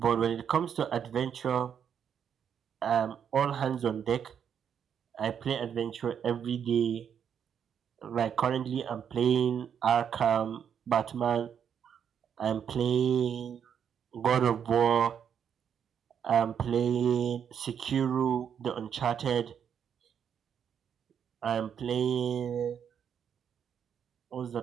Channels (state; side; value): quieter; left; 8.1 dB